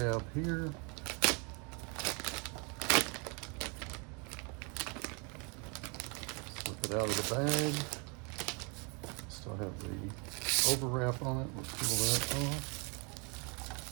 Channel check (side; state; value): left; quieter; 33.1 dB